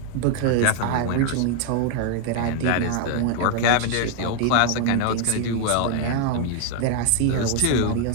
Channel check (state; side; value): different; both; correlation 0.00